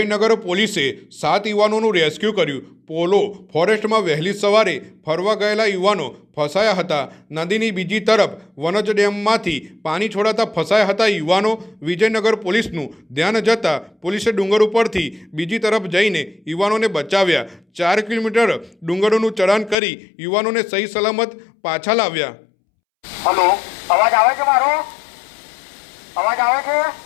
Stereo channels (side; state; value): right; drops out; at 19.8 s